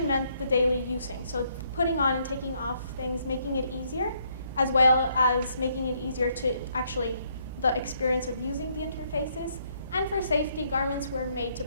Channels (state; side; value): inverted; both; correlation -0.71